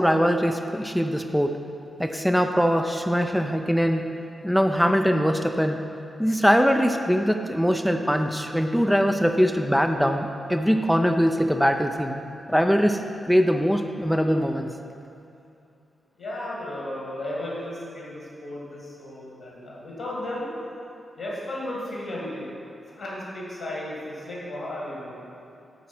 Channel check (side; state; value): both; normal; correlation 0.96